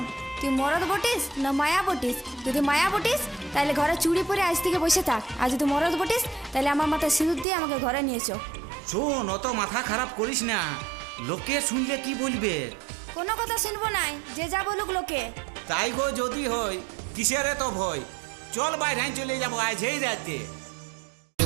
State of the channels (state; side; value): drops out; left; at 7.5 s